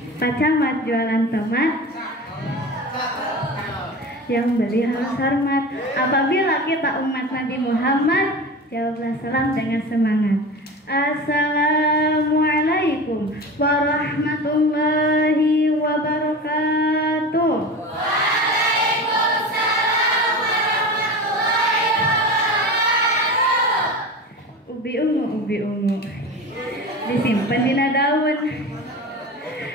Pak Camat jualan tomat, yang beli harus hormat. Apabila kita umat Nabi Muhammad, jawablah salam dengan semangat. Assalamualaikum warahmatullahi wabarakatuh. Waalaikumsalam warahmatullahi wabarakatuh. Ubi ungu disimpan di daun.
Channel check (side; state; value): both; normal; correlation 0.31